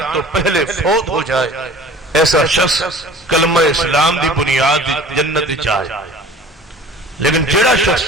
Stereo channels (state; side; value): normal; both; correlation 0.45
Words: تو پہلے فوت ہو جائے ایسا شخص کلمہ اسلام دی بنیاد جنت چاہے. لیکن جڑا شخص